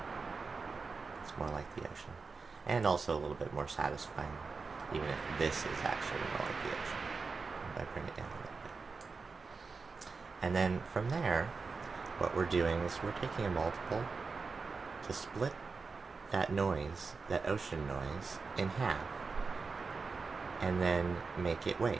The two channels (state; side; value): quieter; left; 4.5 dB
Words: It's more like the ocean. And also a little bit more satisfying, even if this is actually more like the ocean. If I bring it down a little bit. And then from there, what we're doing is we're taking a multiple to split that noise, that ocean noise, in half, and then make it